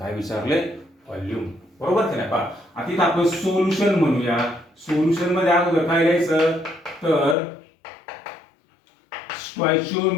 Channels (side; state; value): right; drops out; at 7.4 s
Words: विचारले व्हॉल्यूम बरोबर की नाही आता इथं आपण सोल्युशन म्हणूया. सोल्युशन मध्ये अगोदर काय लिहायचं तर